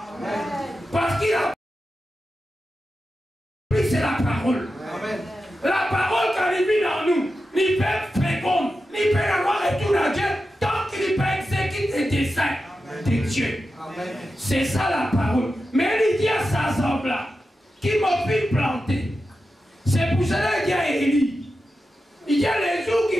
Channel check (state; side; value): normal; both; correlation 0.91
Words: Parce que la pluie, c'est la parole. La parole, quand elle vit dans nous, il peut être féconde, il peut avoir retour à Dieu tant qu'il peut exécuter des desseins de Dieu. C'est ça la parole. Mais il dit à sa semble là, qui m'a fait planter. C'est pour cela qu'il y a Élie. Il y a les jours qui